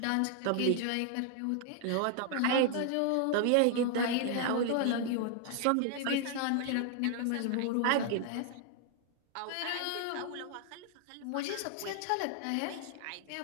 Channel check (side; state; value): both; different; correlation 0.00